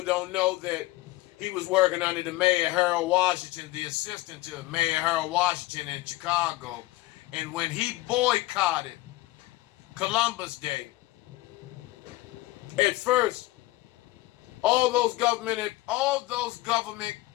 don't know that he was working under the Mayor Harold Washington, the assistant to Mayor Harold Washington in Chicago. And when he boycotted Columbus Day, at first,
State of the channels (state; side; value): quieter; right; 18.6 dB